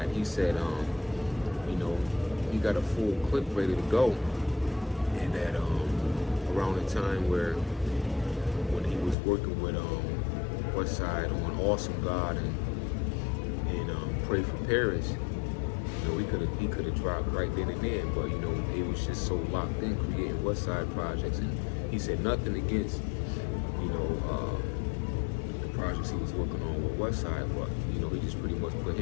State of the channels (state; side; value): drops out; right; at 9.2 s